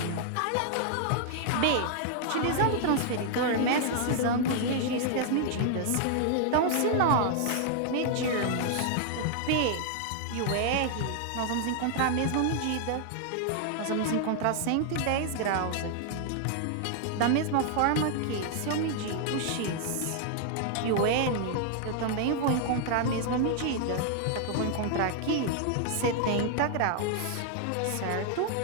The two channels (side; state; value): both; different; correlation 0.00